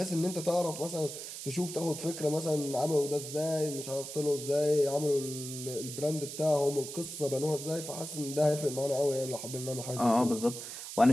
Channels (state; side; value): noise; right; hiss, 9 dB below the sound